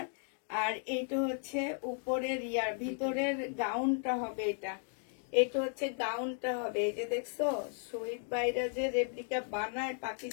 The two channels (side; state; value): right; silent; 54 dB below the other